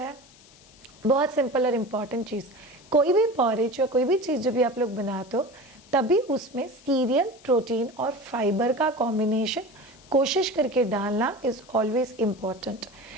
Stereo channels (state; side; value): noise; left; hiss, 25 dB below the sound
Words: बहुत सिंपल और इम्पॉर्टेंट चीज़, कोई भी पॉरेज या कोई भी चीज़ जो भी आप लोग बनाते हो, तभी उसमें सीरियल, प्रोटीन और फाइबर का कॉम्बिनेशन कोशिश करके डालना इज ऑलवेज इम्पॉर्टेंट।